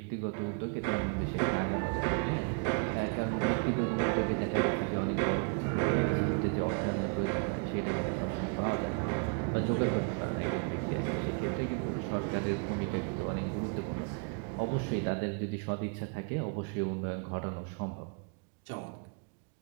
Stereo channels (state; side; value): quieter; left; 37.3 dB